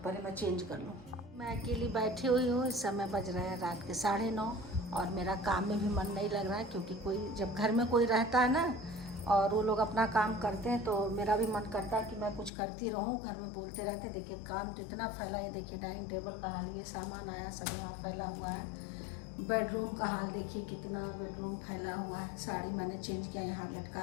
मैं चेंज कर लूँ। मैं अकेली बैठी हुई हूँ, इस समय बज रहे हैं रात के 9:30, और मेरा काम में भी मन नहीं लग रहा है, क्योंकि कोई जब घर में कोई रहता है ना और वो लोग अपना काम करते हैं, तो मेरा भी मन करता है कि मैं कुछ करती रहूँ। घर में बोलते रहते, देखिए काम तो इतना फैला है। देखिए डाइनिंग टेबल का हाल, ये सामान आया सब यहाँ फैला हुआ है। बेडरूम का हाल देखिए कितना बेडरूम फैला हुआ है। साड़ी मैंने चेंज किया, यहाँ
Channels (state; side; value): drops out; right; at 12.5 s